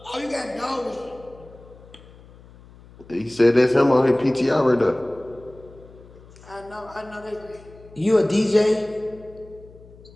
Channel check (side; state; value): left; noise; hum, 22 dB below the sound